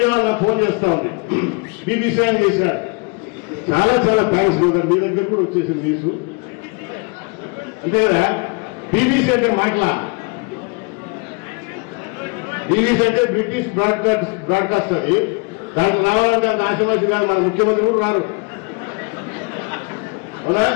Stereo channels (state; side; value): quieter; right; 30.3 dB